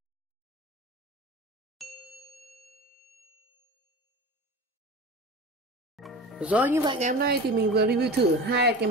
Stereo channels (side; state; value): both; normal; correlation 0.33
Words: Rồi, như vậy ngày hôm nay thì mình vừa review thử hai cái